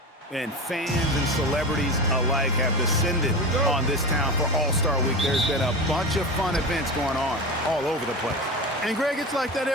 And fans and celebrities alike have descended on this town for All-Star Week. There's been a bunch of fun events going on all over the place. And, Greg, it's like that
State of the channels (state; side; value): normal; both; correlation 0.26